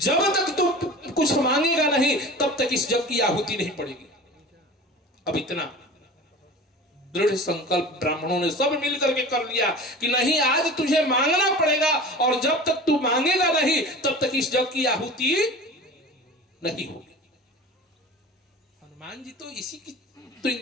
तक तू कुछ मांगेगा नहीं तब तक इस जग की आहुति नहीं पड़ेगी। अब इतना दृढ़ संकल्प ब्राह्मणों ने सब मिलकर के कर लिया कि नहीं, आज तुझे मांगना पड़ेगा, और जब तक तू मांगेगा नहीं तब तक इस जग की आहुति नहीं होगी। हनुमान जी तो इसी की तो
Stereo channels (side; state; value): both; normal; correlation 0.37